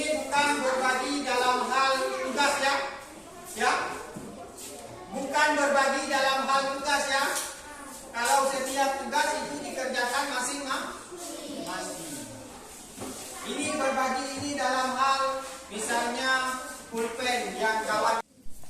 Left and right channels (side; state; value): both; identical; correlation 1.00